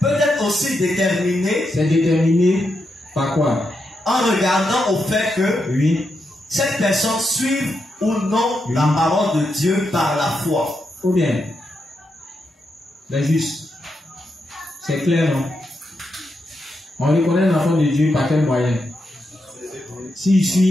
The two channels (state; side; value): normal; both; correlation 0.84